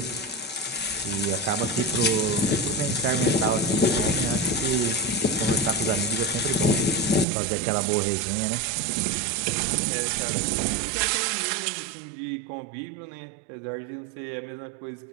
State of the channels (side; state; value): left; drops out; at 7.2 s